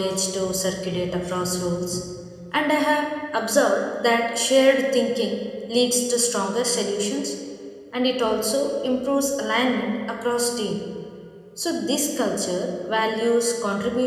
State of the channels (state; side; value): identical; both; correlation 1.00